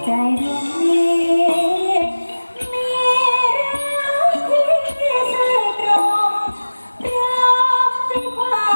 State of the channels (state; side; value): inverted; both; correlation -1.00